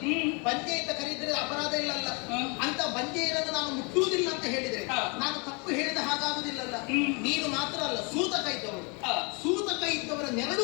ಬಂಜೆ ಅಂತ ಕರೆಯಿದ್ರೆ ಅಪರಾಧ ಇಲ್ಲಲ್ಲ. ಅಂತ ಬಂಜೆಯರನ್ನು ನಾನು ಮುಟ್ಟುವುದಿಲ್ಲ ಅಂತ ಹೇಳಿದ್ರೆ ನಾನು ತಪ್ಪು ಹೇಳಿದ ಹಾಗಾಗುವುದಿಲ್ಲಲ್ಲ. ನೀನು ಮಾತ್ರ ಅಲ್ಲ, ಸೂತಕ ಇದ್ದವಳು. ಸೂತಕ ಇದ್ದವರ ನೆರಳು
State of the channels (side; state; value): right; quieter; 32.2 dB